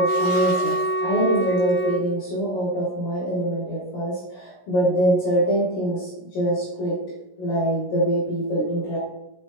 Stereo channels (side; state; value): right; late; 17 ms